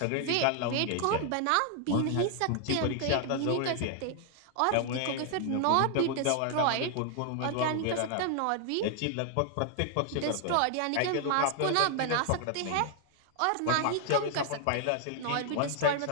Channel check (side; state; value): both; different; correlation 0.00